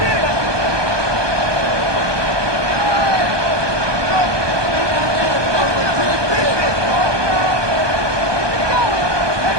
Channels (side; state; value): left; late; 1.2 ms